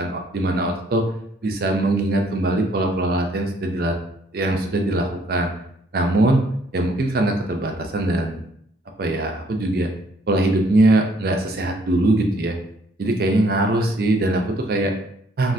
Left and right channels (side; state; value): both; normal; correlation 0.65